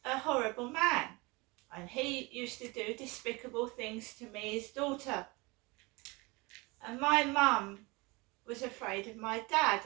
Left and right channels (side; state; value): left; quieter; 25.4 dB